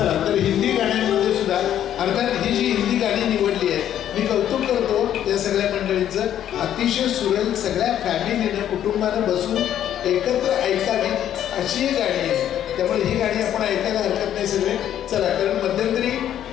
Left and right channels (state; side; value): quieter; right; 10.8 dB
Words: तर हिंदी गाण्यांमध्ये सुद्धा अर्थात ही जी हिंदी गाणी निवडली आहे, मी कौतुक करतो या सगळ्या मंडळींचं. अतिशय सुरेल, सगळ्या फॅमिलीनं कुटुंबानं बसून एकत्र ऐकावी अशी गाणी आहे. त्यामुळे ही गाणी आपण ऐकायला हरकत नाही सगळे. चला, कारण मध्यंतरी